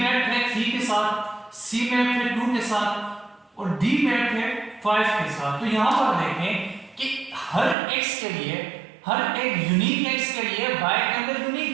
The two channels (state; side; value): drops out; left; at 7.8 s